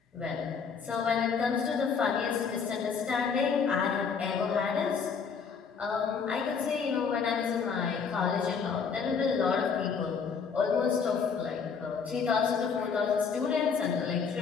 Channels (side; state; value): right; quieter; 6.0 dB